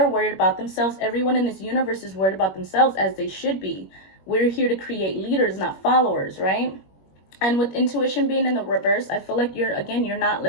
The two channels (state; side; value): late; right; 21 ms